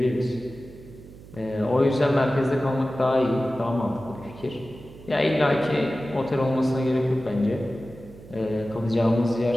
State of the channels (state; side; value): noise; right; hum, 19 dB below the sound